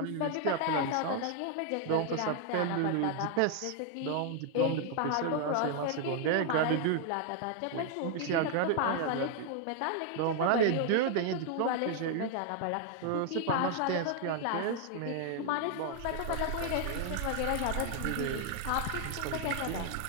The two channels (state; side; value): different; both; correlation 0.00